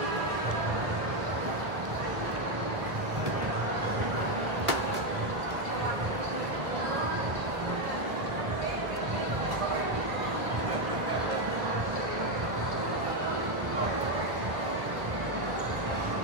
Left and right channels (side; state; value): left; late; 1.1 ms